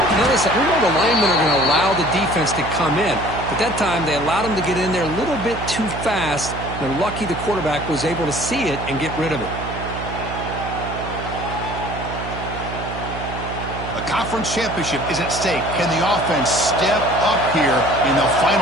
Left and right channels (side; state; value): right; noise; hum, 8 dB below the sound